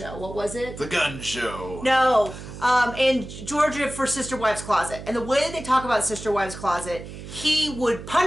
What was it? The gun show. No. In Georgia for Sister Wives Closet. And the way that they talk about Sister Wives Closet, he would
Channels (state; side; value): noise; right; hum, 12 dB below the sound